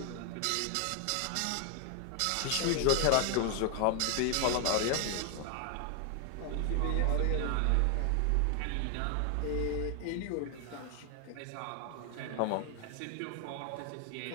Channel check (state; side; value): different; both; correlation 0.00